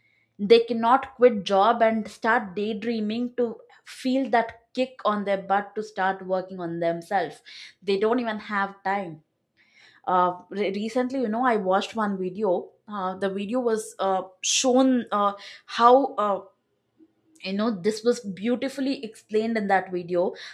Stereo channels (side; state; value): both; identical; correlation 1.00